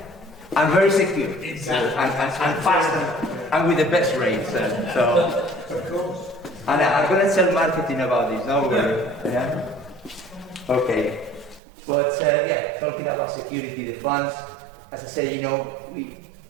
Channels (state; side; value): drops out; left; at 11.6 s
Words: and very secure, Exactly. and fast, and with the best rates. So. Of course. And I'm going to tell marketing about this, no worry. Yeah? Okay. But yeah, talking about security, the funds, as I said, you know,